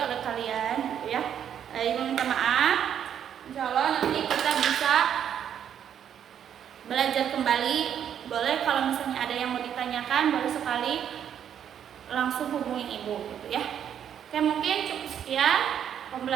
oleh kalian gitu ya. Ibu minta maaf. Insya Allah nanti kita bisa belajar kembali. Boleh kalau misalnya ada yang mau ditanyakan, boleh sekali langsung hubungi ibu gitu ya. Oke, mungkin cukup sekian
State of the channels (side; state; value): left; quieter; 9.1 dB